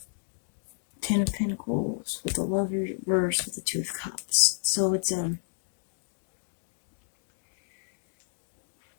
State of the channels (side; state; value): right; silent; digital silence